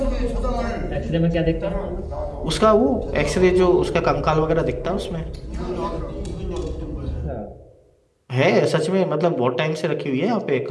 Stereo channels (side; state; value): both; identical; correlation 1.00